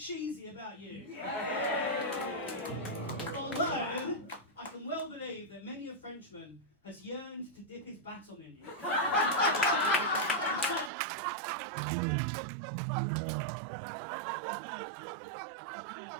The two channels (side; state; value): left; drops out; at 10.9 s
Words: about you. Although, I can well believe that many a Frenchman has yearned to dip his baton in you.